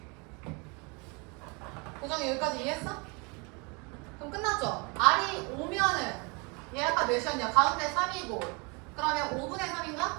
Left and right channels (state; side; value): quieter; left; 30.6 dB